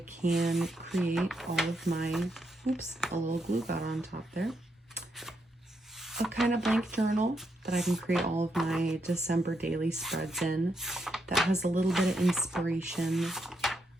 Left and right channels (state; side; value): normal; both; correlation 0.80